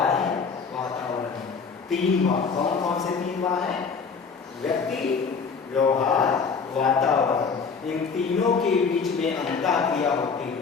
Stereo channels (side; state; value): right; quieter; 5.4 dB